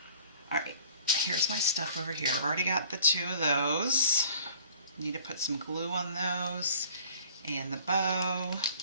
All right, here's my stuff over here. I've already got the 2 of those. Need to put some glue on those and the bow,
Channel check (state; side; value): inverted; both; correlation -0.50